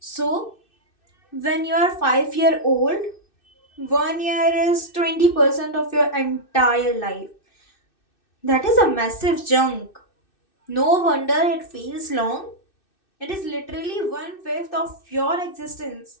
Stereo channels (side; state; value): right; late; 2.6 ms